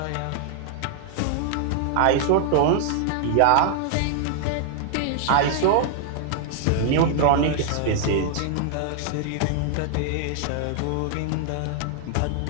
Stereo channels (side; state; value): both; different; correlation 0.00